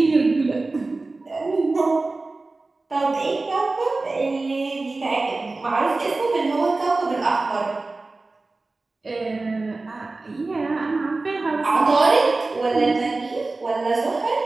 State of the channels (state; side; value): quieter; left; 3.4 dB